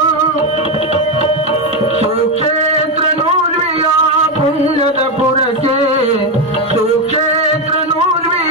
ಸುಕ್ಷೇತ್ರ ನೂರ್ವಿಯ ಪುಣ್ಯದ ಪುರಕ್ಕೆ, ಸುಕ್ಷೇತ್ರ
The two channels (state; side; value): normal; both; correlation 0.09